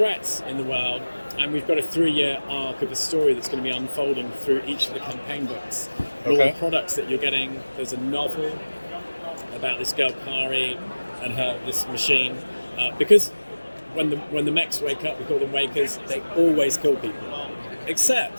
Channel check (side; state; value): both; inverted; correlation -1.00